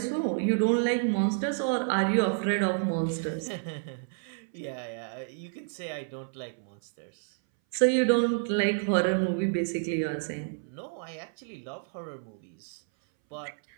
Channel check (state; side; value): silent; left; 58 dB below the other